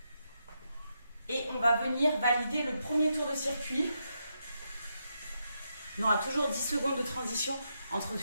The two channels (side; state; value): both; inverted; correlation -0.82